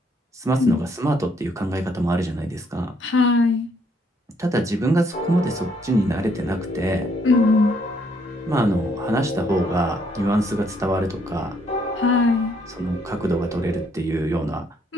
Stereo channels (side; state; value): both; normal; correlation 0.69